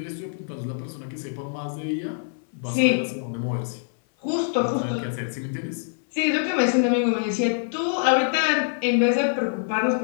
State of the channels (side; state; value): right; silent; 62 dB below the other